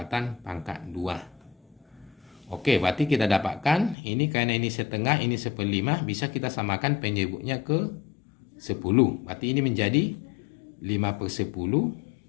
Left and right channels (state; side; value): drops out; right; at 4.0 s